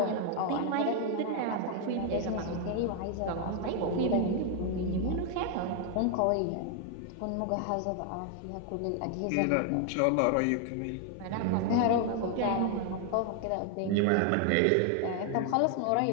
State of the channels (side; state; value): both; different; correlation 0.00